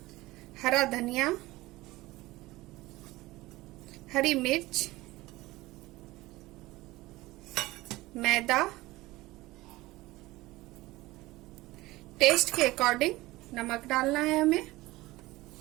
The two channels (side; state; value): left; quieter; 19.2 dB